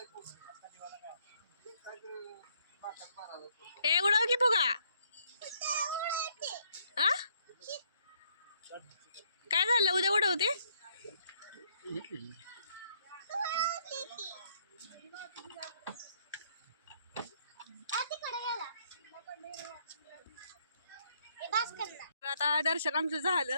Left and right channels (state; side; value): inverted; both; correlation -0.69